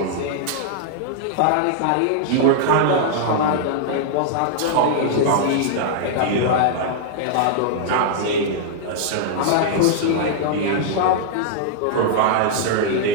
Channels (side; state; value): both; different; correlation -0.01